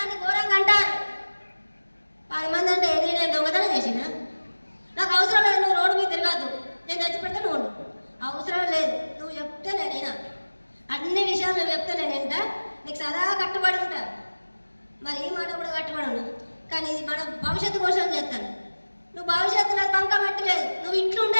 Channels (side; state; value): both; inverted; correlation -1.00